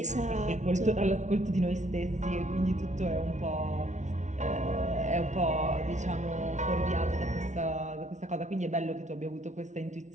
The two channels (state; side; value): late; left; 0.34 ms